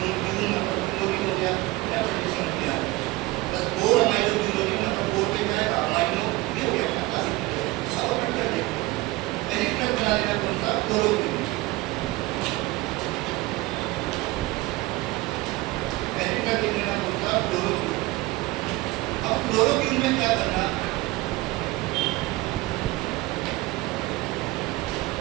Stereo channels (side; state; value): left; quieter; 20.2 dB